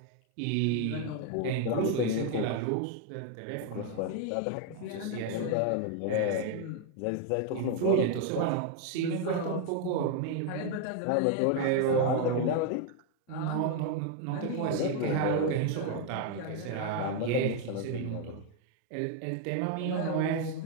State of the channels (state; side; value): different; both; correlation 0.01